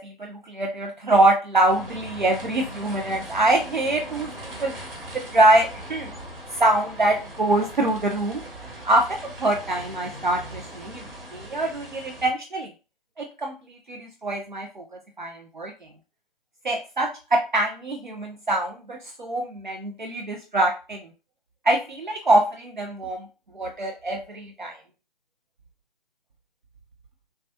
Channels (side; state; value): both; normal; correlation 0.57